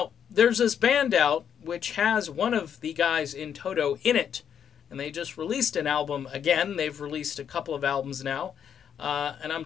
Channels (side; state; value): right; quieter; 8.4 dB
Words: there's this band out which has one of the guys in Toto in it, and they just released an album again. They've released a couple of albums now. And I'm